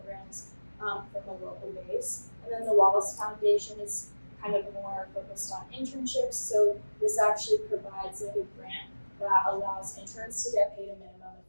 from a local base. And then the Wallace Foundation is kind of more focused on internships. So this actually provides like a grant that allows interns to get paid a minimum of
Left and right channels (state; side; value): inverted; both; correlation -1.00